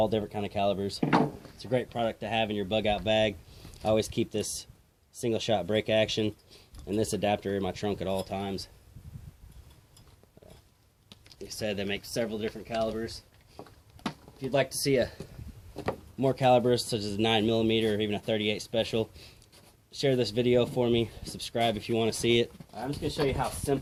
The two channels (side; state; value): both; identical; correlation 1.00